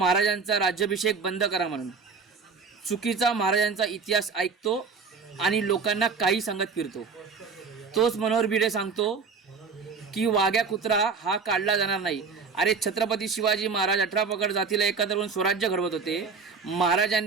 राज्याभिषेक बंद करा म्हणून. चुकीचा महाराजांचा इतिहास ऐकतो आणि लोकांना काही सांगत फिरतो. तोच मनोहर भिडे सांगतो की वाघ्या कुत्रा हा काढला जाणार नाही. अरे छत्रपती शिवाजी महाराज 18 पगड जातीला एकत्र करून स्वराज्य घडवत होते.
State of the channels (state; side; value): quieter; left; 5.1 dB